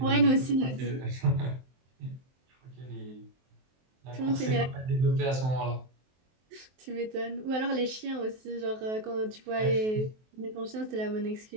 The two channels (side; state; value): left; late; 23 ms